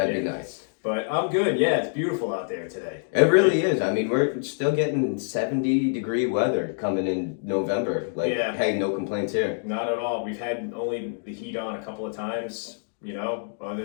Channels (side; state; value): right; silent; digital silence